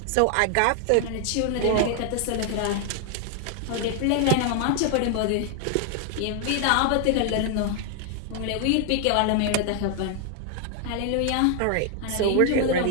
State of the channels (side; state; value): both; different; correlation 0.00